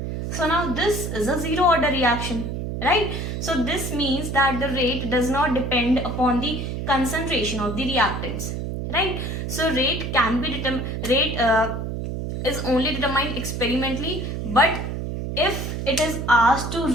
So now this is a zero order reaction, right? So this means that the rate does not depend upon the concentration of the reactants, right? So rate can be is only determined experimentally, but if it is asked to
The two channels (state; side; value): noise; right; hum, 4 dB below the sound